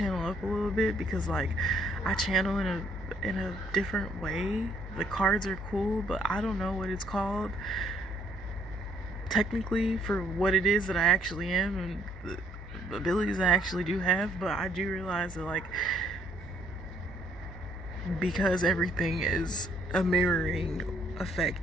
up a little bit, because like, I channel in a different way. The cards are cool, but I don't know what it's called technically for what it is that I actually am and the abilities I actually do have. But I do realize that, like, because everything is a mirroring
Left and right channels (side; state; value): both; normal; correlation 0.66